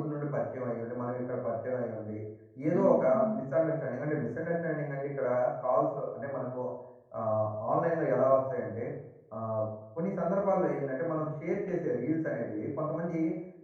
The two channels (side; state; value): both; identical; correlation 1.00